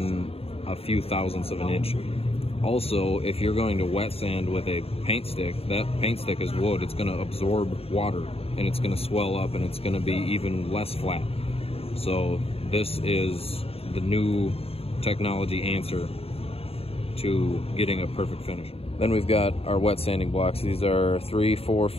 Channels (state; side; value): late; right; 0.28 ms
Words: a few thousandths of an inch. Also, if you're going to wet sand with a paint stick, that paint stick is wood. It's going to absorb water and it's going to swell up and it's going to be even less flat. So this is the new technology answer to getting a perfect finish. Then we've got our wet sanding blocks. These are 3, 4,